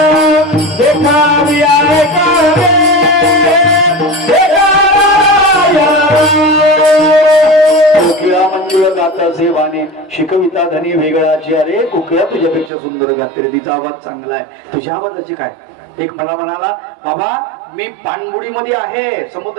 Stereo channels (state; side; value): drops out; left; at 12.7 s